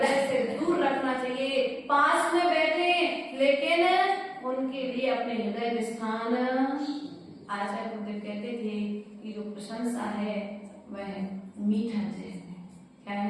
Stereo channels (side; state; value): both; identical; correlation 1.00